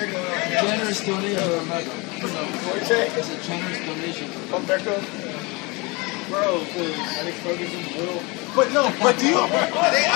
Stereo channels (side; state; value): right; quieter; 26.6 dB